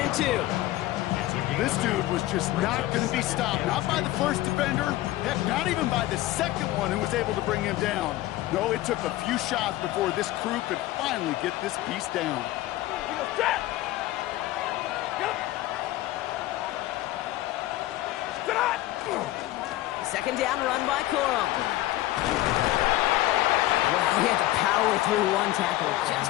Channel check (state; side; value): quieter; right; 16.1 dB